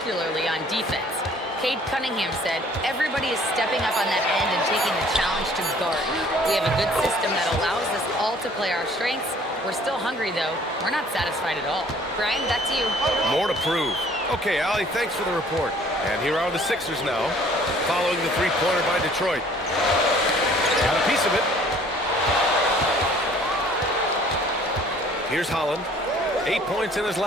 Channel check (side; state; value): both; normal; correlation 0.55